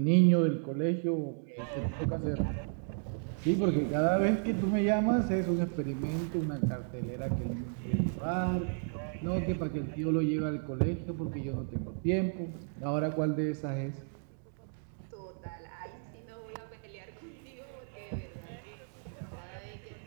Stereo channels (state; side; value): silent; left; digital silence